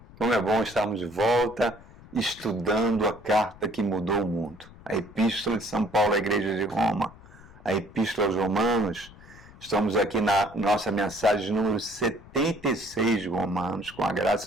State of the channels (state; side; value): noise; left; rumble, 21 dB below the sound